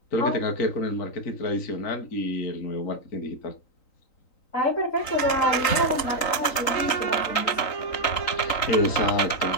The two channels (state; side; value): late; right; 3.9 ms